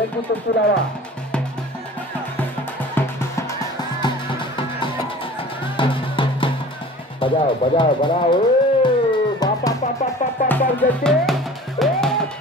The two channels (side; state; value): both; normal; correlation 0.43